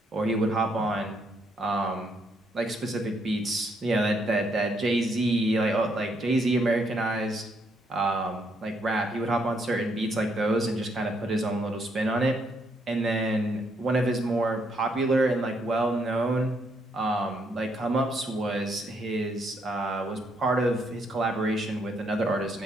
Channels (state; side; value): normal; both; correlation 0.74